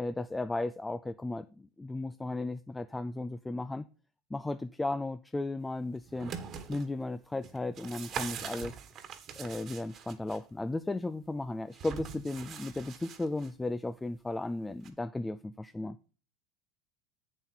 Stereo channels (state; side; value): normal; both; correlation 0.93